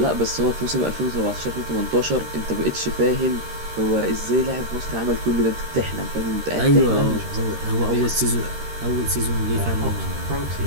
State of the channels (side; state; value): left; late; 13 ms